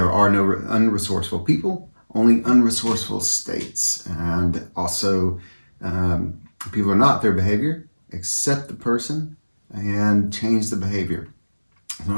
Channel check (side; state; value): both; inverted; correlation -1.00